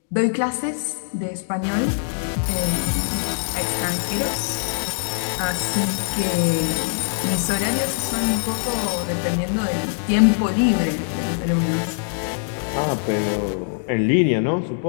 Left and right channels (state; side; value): silent; right; digital silence